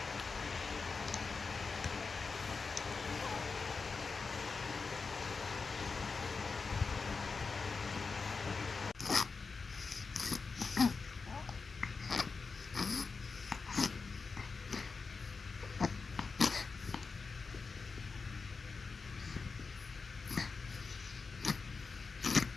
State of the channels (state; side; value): quieter; right; 4.6 dB